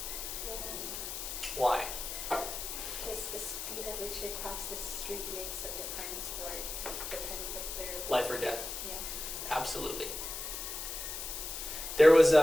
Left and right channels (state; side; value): noise; left; hiss, 6 dB below the sound